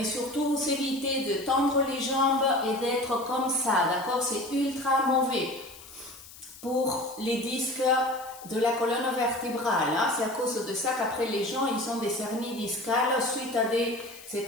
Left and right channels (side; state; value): left; noise; hiss, 18 dB below the sound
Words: surtout vous évitez de tendre les jambes et d'être comme ça, d'accord? C'est ultra mauvais pour les disques de la colonne vertébrale. Hein? C'est à cause de ça qu'après les gens, ils ont des hernies discales suite à des